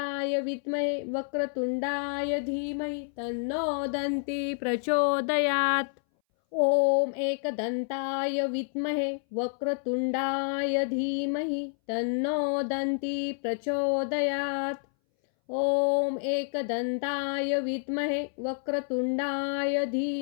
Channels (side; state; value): right; silent; 59 dB below the other